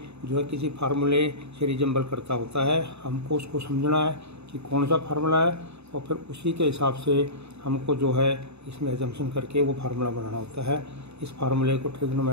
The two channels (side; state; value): left; late; 0.80 ms